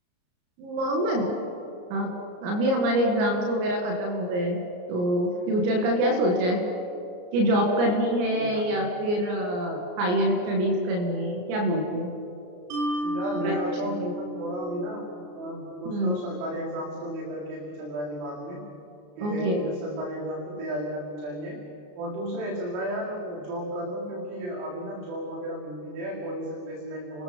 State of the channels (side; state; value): left; late; 34 ms